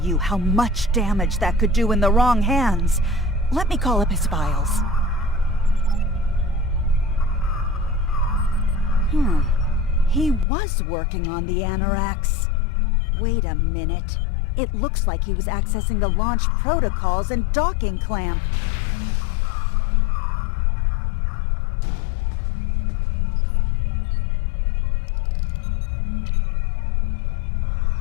you how much damage that could do in the wrong hands. Let me call up his files. He was working on the Anorax. Wait a minute. It looks like he was accessing the launch protocols and docking clamp.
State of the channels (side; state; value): right; drops out; at 10.5 s